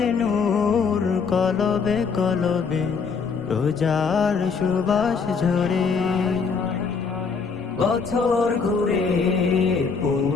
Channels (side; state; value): right; quieter; 5.4 dB